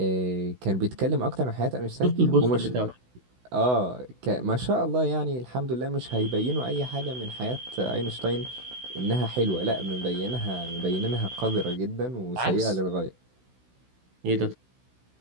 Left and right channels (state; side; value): late; left; 16 ms